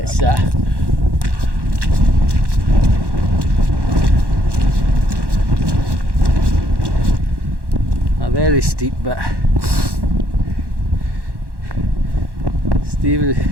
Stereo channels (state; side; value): late; left; 1.1 ms